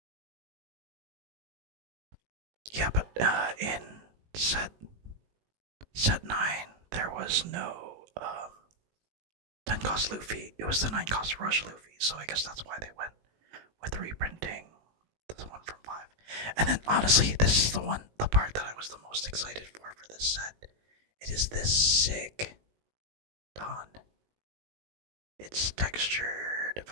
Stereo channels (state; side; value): late; left; 19 ms